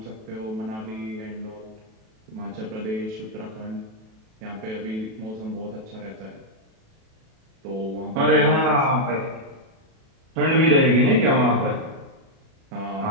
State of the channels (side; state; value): left; late; 37 ms